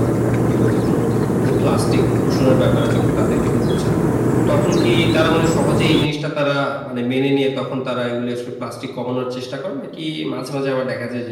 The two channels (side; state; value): both; identical; correlation 1.00